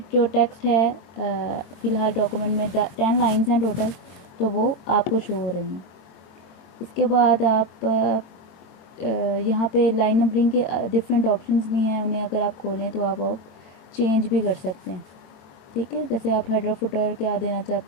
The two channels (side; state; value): right; late; 22 ms